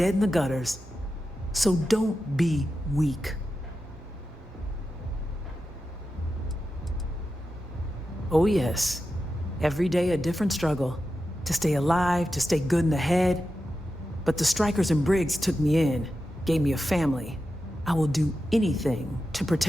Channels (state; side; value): normal; both; correlation 0.91